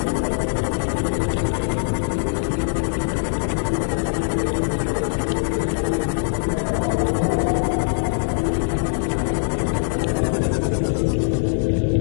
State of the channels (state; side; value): silent; right; 55 dB below the other